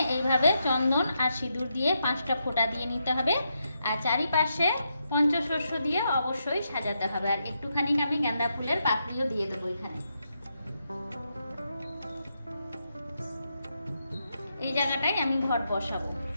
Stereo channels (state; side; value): inverted; both; correlation -0.82